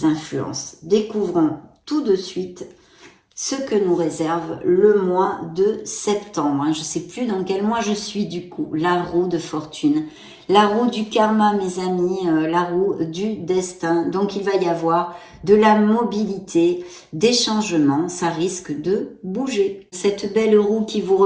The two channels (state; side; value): identical; both; correlation 1.00